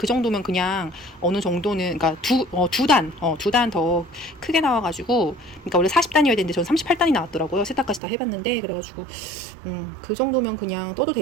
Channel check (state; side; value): drops out; left; at 8.0 s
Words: 정도면 그냥 어느 정도는 그러니까 두 단 더 크게 나와가지고 그러니까 원래 40단이어야 되는데 저는 38단이 나왔더라고요. 세탁까지 다 해봤는데 그래가지고 그 정도면 그냥 떠도